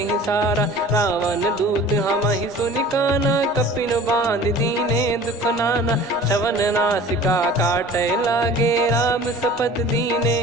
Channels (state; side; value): normal; both; correlation 0.43